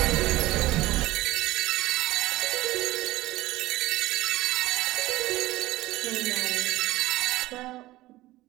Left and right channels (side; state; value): left; quieter; 17.5 dB